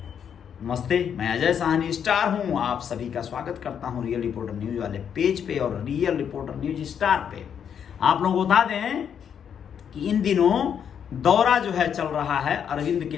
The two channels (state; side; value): quieter; right; 8.1 dB